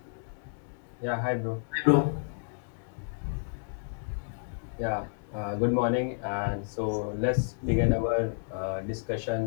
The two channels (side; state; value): right; silent; digital silence